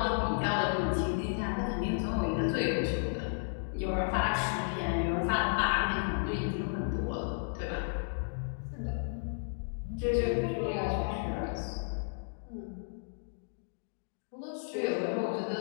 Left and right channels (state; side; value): silent; right; digital silence